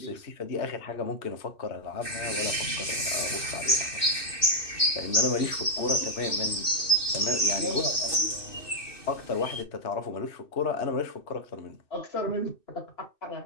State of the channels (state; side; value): late; right; 2.6 ms